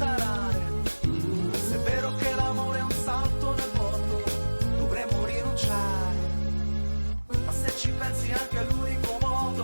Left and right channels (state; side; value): inverted; both; correlation -1.00